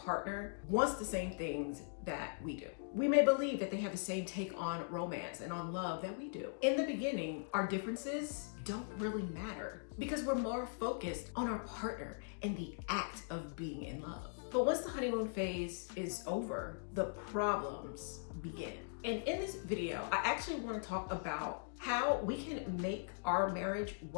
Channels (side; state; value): right; silent; digital silence